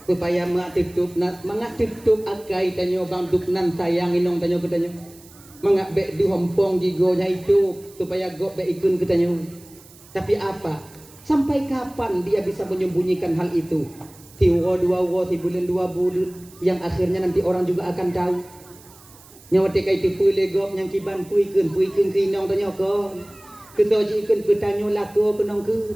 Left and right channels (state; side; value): noise; right; hiss, 23 dB below the sound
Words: supaya mak tutup nak mangak tutup akai tanya bang duk nan sayang inong tanya ke tanya mangak bek di hompong gigo nya itu supaya go bek ikun ke tanya. Tapi apa sampai kapan dia bisa menyembunyikan hal itu? Tiwa dua wo tibulan dua bulan yang akhirnya nanti orang juga akan tahu nyawa tekai tipu legop yang kiban puikun ke inong tanya ko kita jikan bertanya laku kenang ke